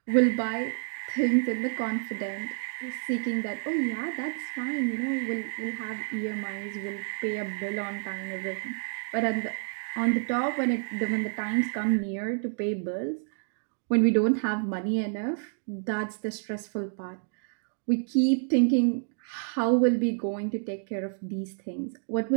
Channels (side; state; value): left; silent; digital silence